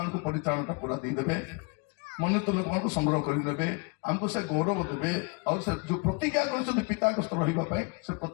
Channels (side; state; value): right; quieter; 31.0 dB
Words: ପରିତ୍ରାଣଟା ପୁରା ଦେଇଦେବେ ମନୋନୀତ ଲୋକମାନଙ୍କୁ ସଂଗ୍ରହ କରିନେବେ ଆମକୁ ସେ ଗୌରବ ଦେବେ ଆଉ ସେ ଯୋଉ ପ୍ରତିଜ୍ଞା କରିଛନ୍ତି ପିତାଙ୍କ ସ୍ତର ରହିବା ପାଇଁ ସେ